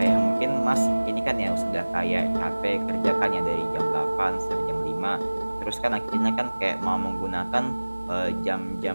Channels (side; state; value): both; inverted; correlation -1.00